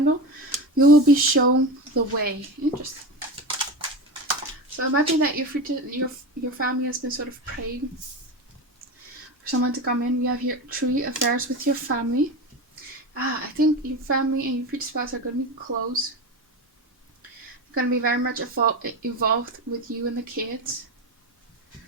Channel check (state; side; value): normal; both; correlation 0.23